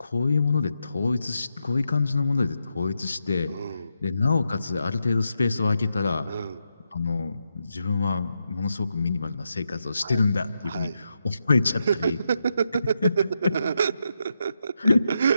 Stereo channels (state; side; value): inverted; both; correlation -0.84